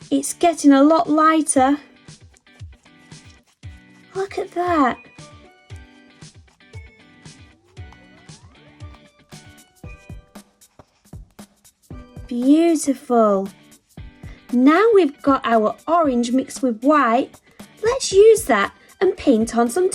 It's getting a lot lighter. Look at that. Beautiful. Now we've got our orange mixed with white. Let's use that and paint on some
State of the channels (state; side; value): identical; both; correlation 1.00